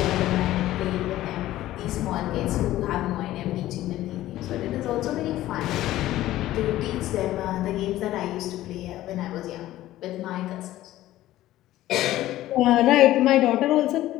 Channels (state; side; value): quieter; right; 14.9 dB